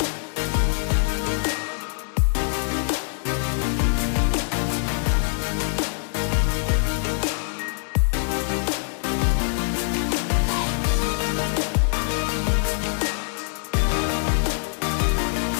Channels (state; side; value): silent; right; 63 dB below the other